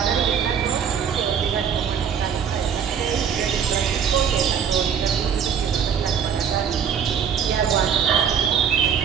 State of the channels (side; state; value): left; quieter; 7.7 dB